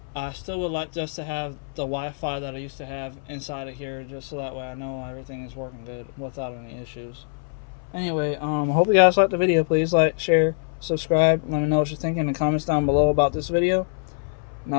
I still would like just to have the Wi-Fi that I used to have inside of here, just so that way I know everything is working good without any issues. Anyway, I hope you guys liked the video. Please like, share, subscribe. Let me know what you're thinking in the comments down below about this video. And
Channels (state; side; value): silent; right; 60 dB below the other